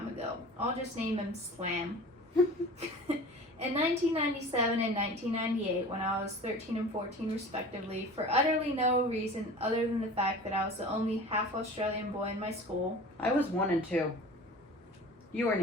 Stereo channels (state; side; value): normal; both; correlation 0.39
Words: ago. I'll just name him Slam. In 1997 and 1998, when I was 13 and 14 respectively, for utterly no reason other than the fact that I was the only half Australian boy in my school. I was 1 and 2. You weren't